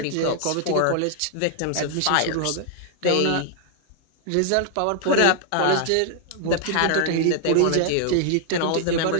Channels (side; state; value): both; different; correlation 0.00